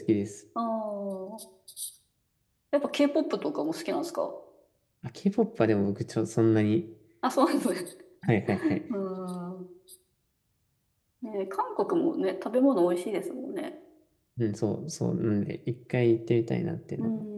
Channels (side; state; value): both; identical; correlation 1.00